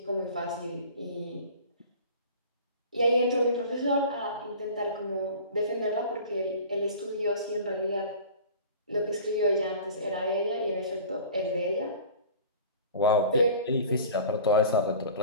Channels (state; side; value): inverted; both; correlation -0.42